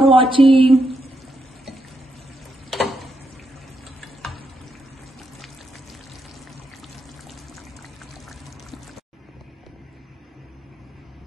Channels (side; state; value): both; normal; correlation 0.81